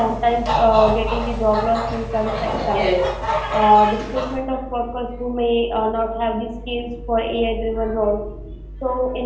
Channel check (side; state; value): both; identical; correlation 1.00